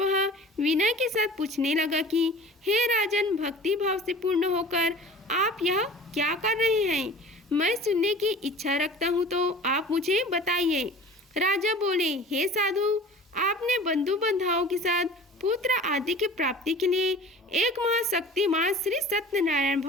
विनय के साथ पूछने लगा कि हे राजन, भक्ति भाव से पूर्ण होकर आप यह क्या कर रहे हैं? मैं सुनने की इच्छा रखता हूँ, तो आप मुझे बताइए। राजा बोले, हे साधु, आपने बंधु बांधवों के साथ पुत्र आदि की प्राप्ति के लिए एक महाशक्तिमान श्री सत्यनारायण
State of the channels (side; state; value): both; normal; correlation 0.42